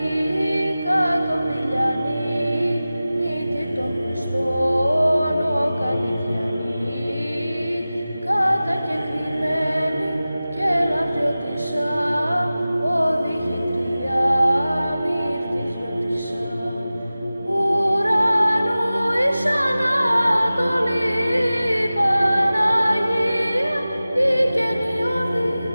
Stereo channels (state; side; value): inverted; both; correlation -0.96